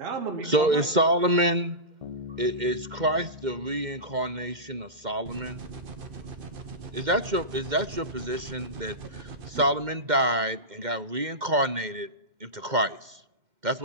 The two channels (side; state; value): left; late; 2.1 ms